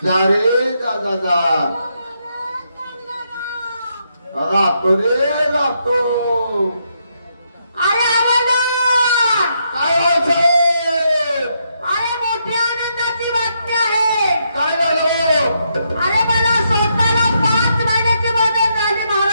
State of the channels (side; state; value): both; inverted; correlation -0.78